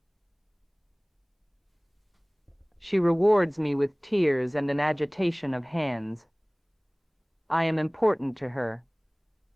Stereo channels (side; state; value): both; identical; correlation 1.00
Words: She rewards me with tears and an agitation of hands. I am important to her.